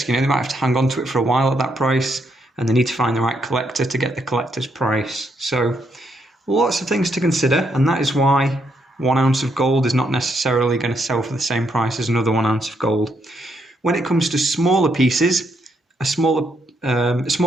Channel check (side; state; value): both; normal; correlation 0.76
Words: you know, they might have to hang on to it for a while at that price, and they need to find the right collector to get the collector's price. So lots of things to consider, and that is why 1 ounce of gold is not necessarily going to sell for the same price as another 1 ounce of gold. When it comes to smaller pieces, a smaller